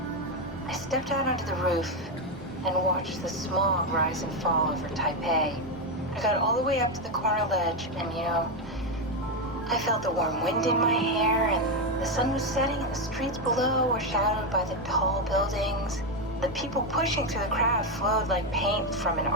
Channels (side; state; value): both; normal; correlation 0.07